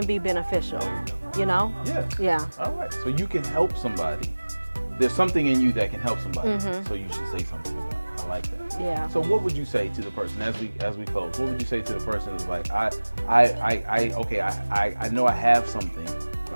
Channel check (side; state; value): both; inverted; correlation -1.00